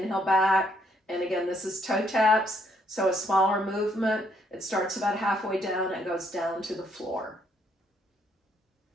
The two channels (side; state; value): both; normal; correlation 0.70